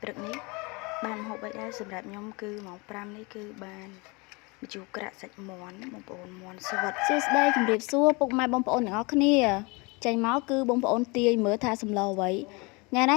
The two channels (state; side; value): quieter; right; 27.6 dB